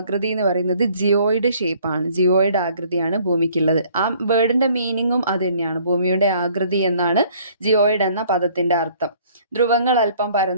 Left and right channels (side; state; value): both; inverted; correlation -0.58